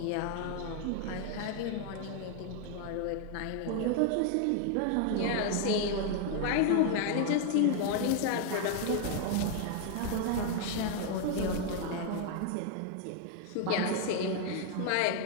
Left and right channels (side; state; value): both; different; correlation 0.00